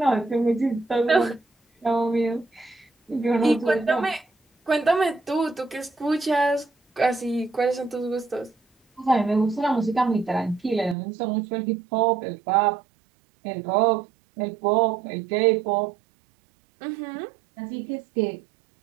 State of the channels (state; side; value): drops out; left; at 11.0 s